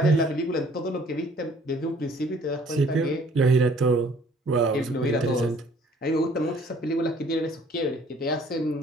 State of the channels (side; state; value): both; normal; correlation 0.57